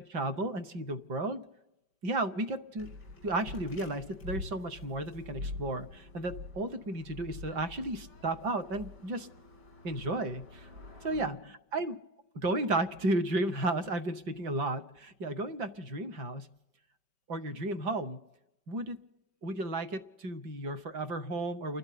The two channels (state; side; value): late; left; 5.2 ms